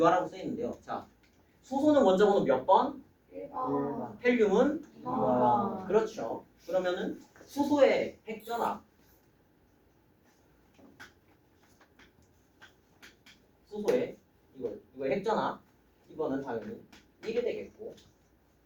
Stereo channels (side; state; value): both; identical; correlation 1.00